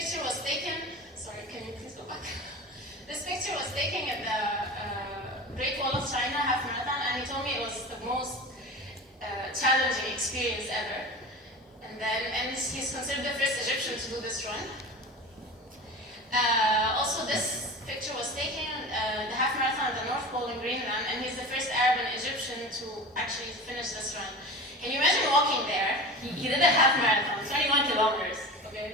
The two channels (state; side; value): normal; both; correlation 0.32